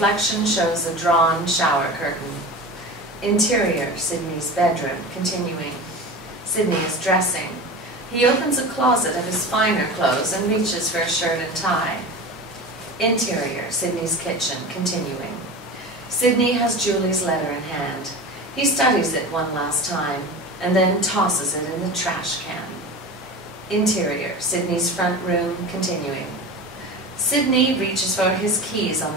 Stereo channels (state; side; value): normal; both; correlation 0.31